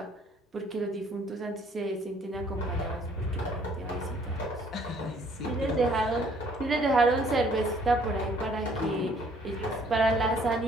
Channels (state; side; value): normal; both; correlation 0.61